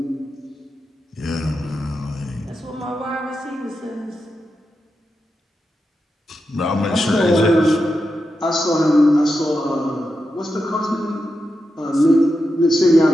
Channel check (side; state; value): both; normal; correlation 0.88